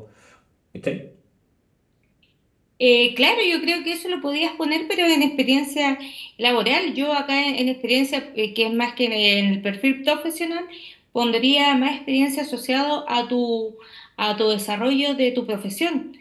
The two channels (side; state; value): both; identical; correlation 1.00